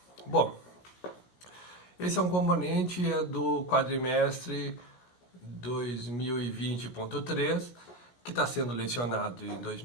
Bom, esse é um componente do quadrimestre 2020.3, que está sendo lecionado em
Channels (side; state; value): right; late; 17 ms